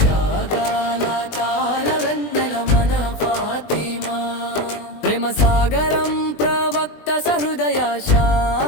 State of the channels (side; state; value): right; late; 20 ms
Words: తాళ వెన్నెల మన ఫాతిమా, ప్రేమ సాగరం ప్రవక్త సహృదయ